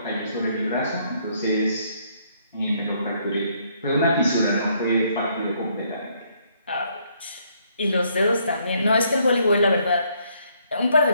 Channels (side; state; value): both; inverted; correlation -0.69